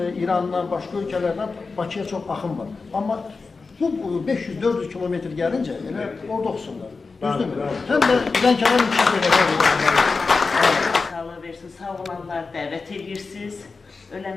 İrandan, başqa ölkələrdən Bakıya çox axın var. Amma bu 500-400 kilometr gəlincə elə orada oxusunlar. Düzdürmü? Həm də Lənkəran sağlığı versin, sağ olanlar dəvət edirsiniz,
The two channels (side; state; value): right; quieter; 4.3 dB